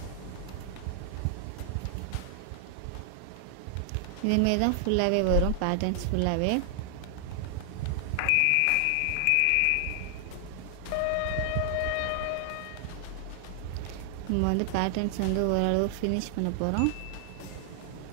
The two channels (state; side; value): different; both; correlation 0.00